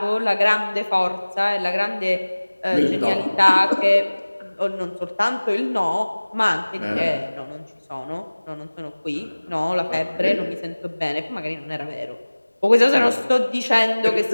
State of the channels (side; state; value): both; inverted; correlation -1.00